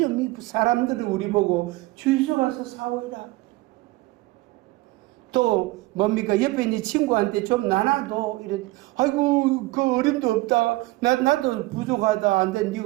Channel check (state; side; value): quieter; left; 20.4 dB